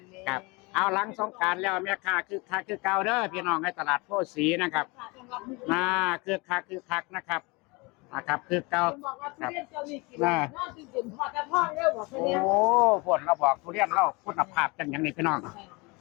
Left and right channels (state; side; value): quieter; right; 26.7 dB